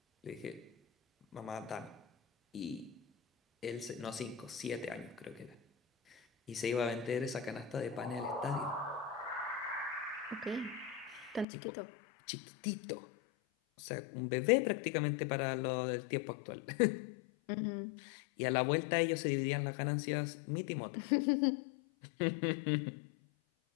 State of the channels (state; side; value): drops out; right; at 11.5 s